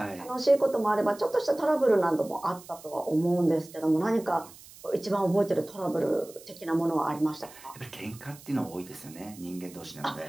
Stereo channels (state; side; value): noise; right; hiss, 20 dB below the sound